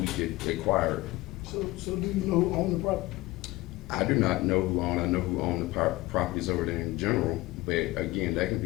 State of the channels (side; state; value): right; quieter; 19.6 dB